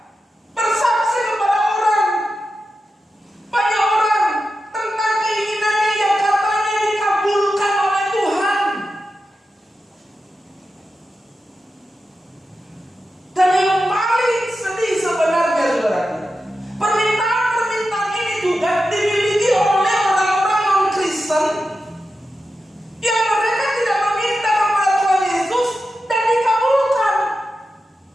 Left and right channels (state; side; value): normal; both; correlation 0.91